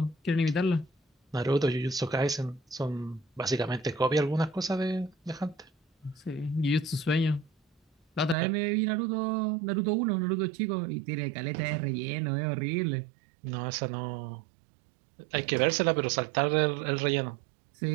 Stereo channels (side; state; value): left; drops out; at 8.3 s